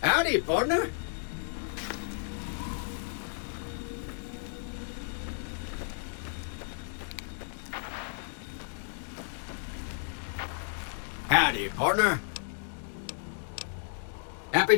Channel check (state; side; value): silent; right; digital silence